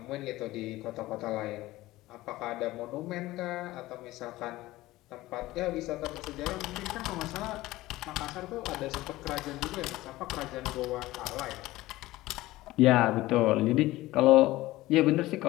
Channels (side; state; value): right; quieter; 17.7 dB